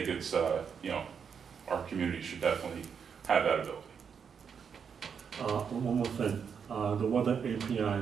it's, our community should definitely have that ability. One more thing, the weather API, I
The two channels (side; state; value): left; quieter; 6.8 dB